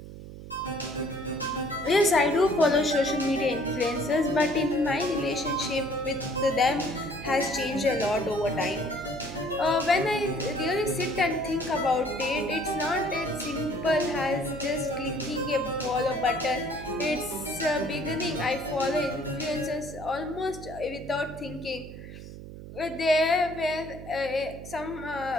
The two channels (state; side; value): noise; right; hum, 13 dB below the sound